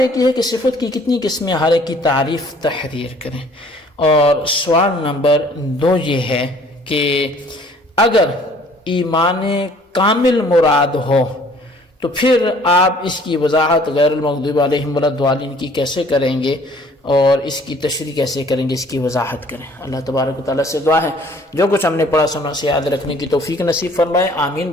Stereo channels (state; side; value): normal; both; correlation 0.56